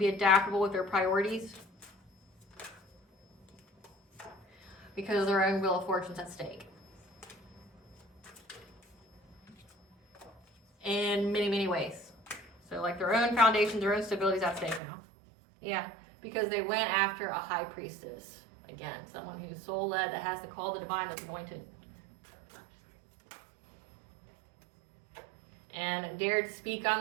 adaptable with their priorities, because their own wheel of fortune's at stake. In many, many ways. So like their own foundations, their own stability's at stake now. Yeah, because they went after a high priestess. Again, someone who's soul-led, that has the call of the divine, that's anointed. and dared speak on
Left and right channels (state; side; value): drops out; left; at 14.8 s